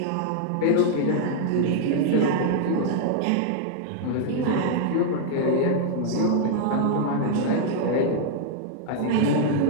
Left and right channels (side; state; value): both; different; correlation -0.01